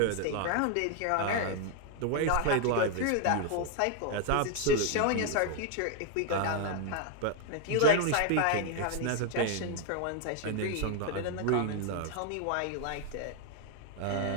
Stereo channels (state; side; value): different; both; correlation 0.00